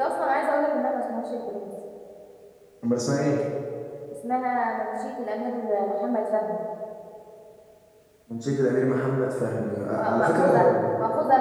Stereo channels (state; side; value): identical; both; correlation 1.00